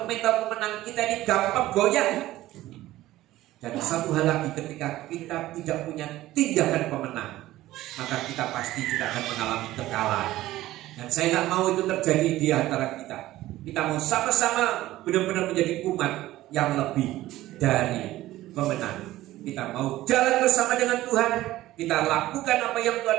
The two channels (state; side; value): quieter; left; 15.8 dB